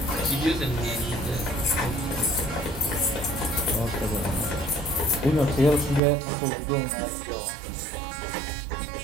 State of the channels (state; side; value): drops out; left; at 6.0 s